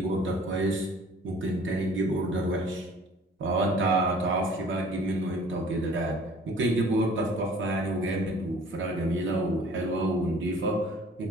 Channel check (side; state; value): both; normal; correlation 0.51